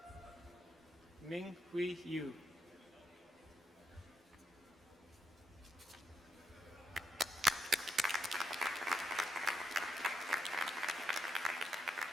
Ming Hui Yu.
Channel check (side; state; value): both; normal; correlation 0.80